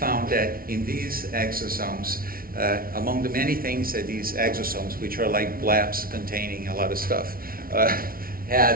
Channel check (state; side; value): late; left; 0.43 ms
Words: that in these exosomes, among the many things that these exosomes, which are like blebs containing a lot of stuff,